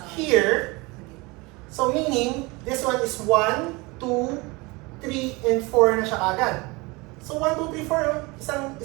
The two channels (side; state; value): left; quieter; 24.8 dB